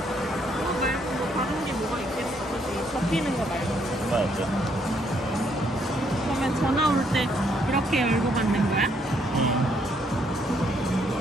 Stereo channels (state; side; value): normal; both; correlation 0.70